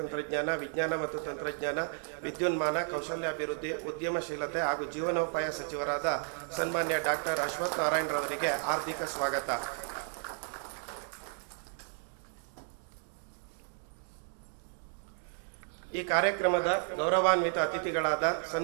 ವಿಜ್ಞಾನ ಮತ್ತು ತಂತ್ರಜ್ಞಾನ, ವಿದ್ಯುನ್ಮಾನ, ಕೌಶಲ್ಯಾಭಿವೃದ್ಧಿ, ಉದ್ಯಮಶೀಲತೆ ಹಾಗೂ ಜೀವನೋಪಾಯ ಸಚಿವರಾದ ಸನ್ಮಾನ್ಯ ಡಾಕ್ಟರ್ ಅಶ್ವಥ್ ನಾರಾಯಣರವರಿಗೆ ಹಾರ್ದಿಕ ಸ್ವಾಗತ. ಈ ಕಾರ್ಯಕ್ರಮದ ಗೌರವಾನ್ವಿತ ಅತಿಥಿಗಳಾದ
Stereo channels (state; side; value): silent; left; 56 dB below the other